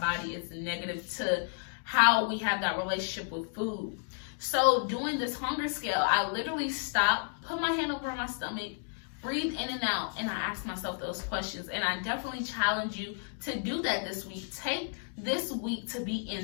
It's negative to how we have that relationship with food. So doing this hunger scale, I literally stopped, put my hand over my stomach breathe in and out, and I ask myself those questions. And I definitely challenge you to do that this week. Take this week to be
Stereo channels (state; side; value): silent; right; 56 dB below the other